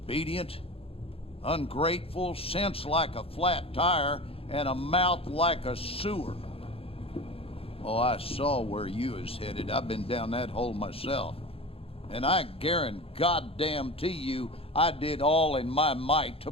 ungrateful, sense like a flat tire, and a mouth like a sewer. Oh, I saw where you was headed. I've been down that hole myself. And I guarantee you, I did all in my might to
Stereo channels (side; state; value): right; late; 0.27 ms